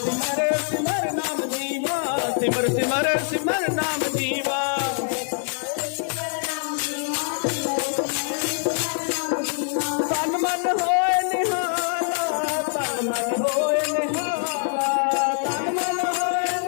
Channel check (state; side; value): silent; right; 61 dB below the other